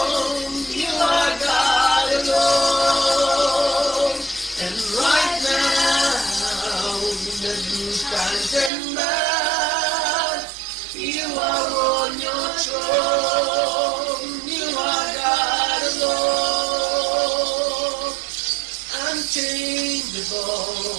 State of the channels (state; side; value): drops out; left; at 8.7 s